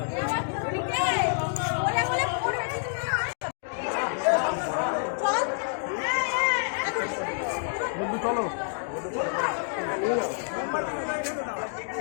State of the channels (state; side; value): silent; right; digital silence